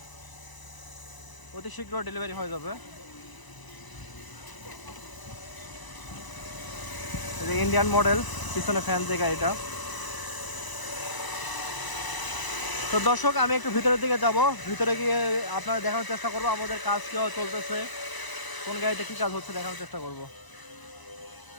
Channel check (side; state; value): right; late; 1.0 ms